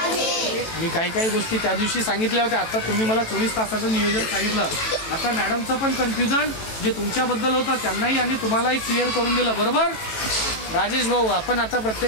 मी काही गोष्टी त्या दिवशी सांगितल्या होत्या. आता तुम्ही मला 24 तासाचं नियोजन सांगितलं. आता मॅडमचं पण कन्फ्युजन जे तुमच्याबद्दल होतं त्यांनाही आणि तुम्हालाही क्लिअर करून दिलं, बरोबर? राजेश भाऊ, आपण आता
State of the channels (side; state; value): right; late; 18 ms